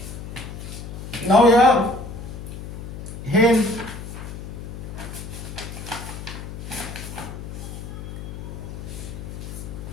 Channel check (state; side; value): noise; left; hum, 9 dB below the sound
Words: Now here, hence